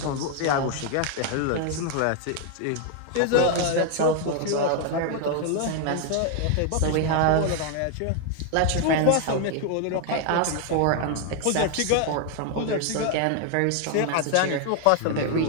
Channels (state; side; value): different; both; correlation 0.00